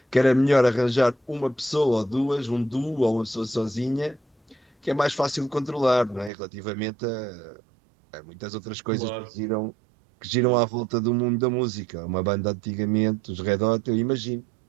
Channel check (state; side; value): drops out; left; at 6.3 s